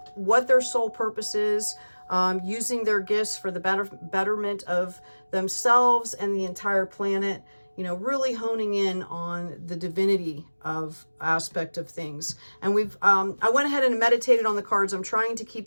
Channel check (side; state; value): both; inverted; correlation -1.00